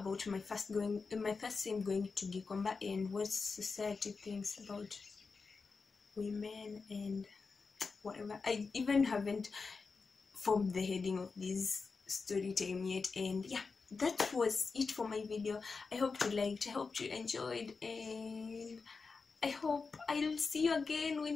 my first time going to Gikomba and what society thinks about women and whatever. I even haven't formed the heading of this story time yet. And yeah, that was it for my video. I hope you liked, I hope you enjoyed, and I hope I'll see you again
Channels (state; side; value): quieter; right; 4.6 dB